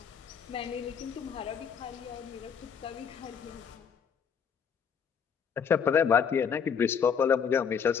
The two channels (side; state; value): right; quieter; 6.9 dB